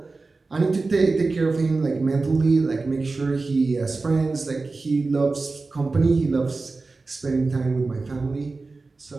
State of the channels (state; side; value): quieter; left; 3.8 dB